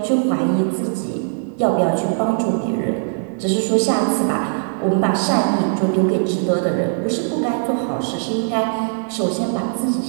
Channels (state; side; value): silent; left; 66 dB below the other